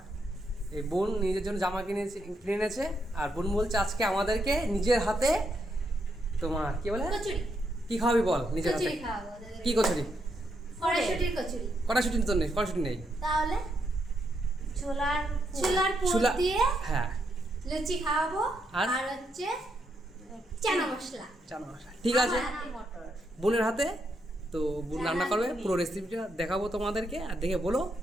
এই বোন নিজের জন্য জামা কিনে এনেছে, আর বোন বলছে আজকে আমাদেরকে নিজের হাতে তোমার কি বলে কি খাওয়াবি বল, নিজের হাতে কি কচুরি, কড়াইশুঁটি তো নেই, কড়াইশুঁটি নেই, তাহলে ছোলার দিয়ে হ্যাঁ লুচি খাওয়াবো। আর হচ্ছে চানা মশলা। ঠিক আছে বোনের হাতে। তো বোন রান্না করবে, পুরো রেসিপিটা দেখাবো তোমাদেরকে, আর দেখে বলো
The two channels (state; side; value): normal; both; correlation 0.79